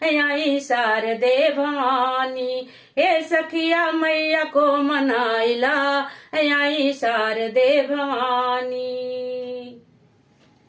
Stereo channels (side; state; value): both; identical; correlation 1.00